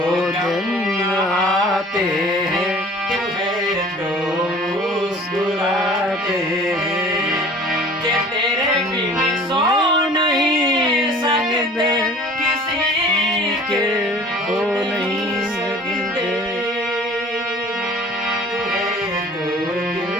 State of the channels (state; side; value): normal; both; correlation 0.47